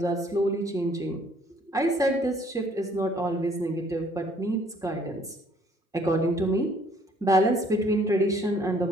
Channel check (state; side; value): normal; both; correlation 0.61